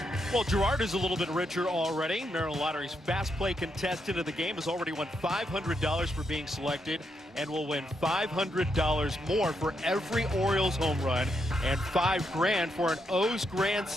Well, Gerard is a little bit richer already. Maryland Lottery's fast play contestant of the game has already won $500 for being selected, and will win $500 more for every Orioles home run, and $5 grand for an O's Grand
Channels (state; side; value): normal; both; correlation 0.80